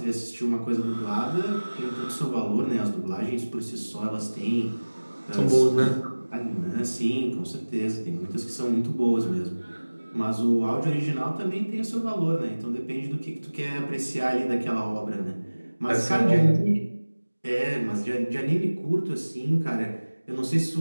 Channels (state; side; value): inverted; both; correlation -1.00